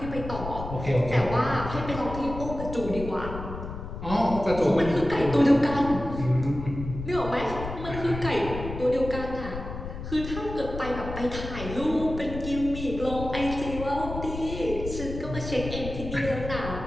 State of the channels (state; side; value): noise; left; rumble, 8 dB below the sound